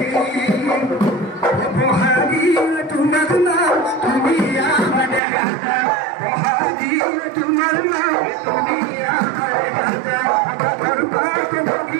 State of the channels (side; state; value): left; drops out; at 5.2 s